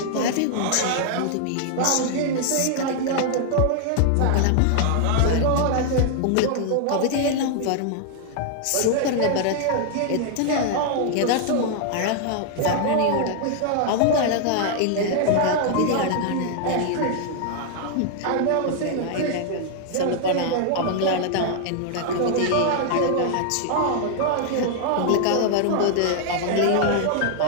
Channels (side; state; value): both; different; correlation 0.00